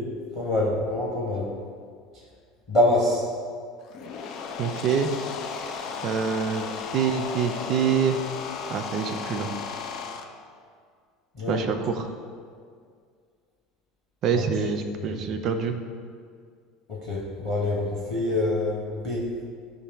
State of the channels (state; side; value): normal; both; correlation 0.33